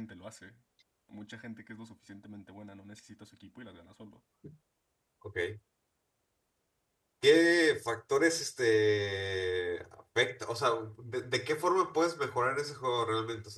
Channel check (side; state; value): both; identical; correlation 1.00